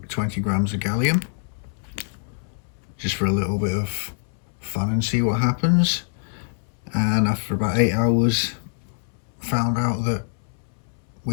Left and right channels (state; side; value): silent; right; 62 dB below the other